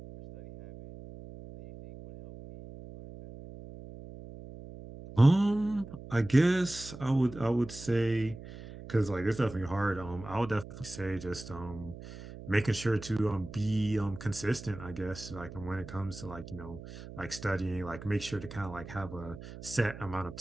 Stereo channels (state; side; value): noise; right; hum, 14 dB below the sound